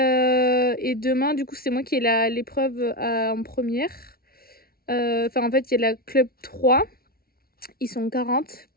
demain, du coup, c'est moi qui ai l'épreuve en première. Enfin, en fait, il y a la club 3. Ils sont 40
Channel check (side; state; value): right; late; 0.44 ms